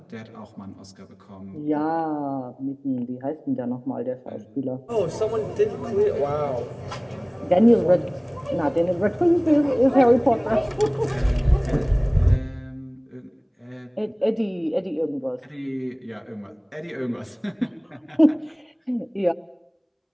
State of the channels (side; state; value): both; identical; correlation 1.00